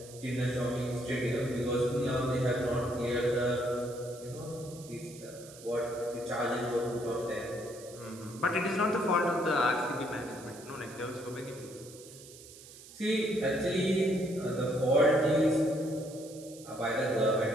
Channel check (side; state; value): right; noise; hiss, 18 dB below the sound